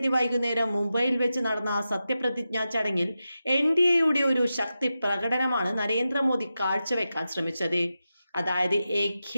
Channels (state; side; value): inverted; both; correlation -0.91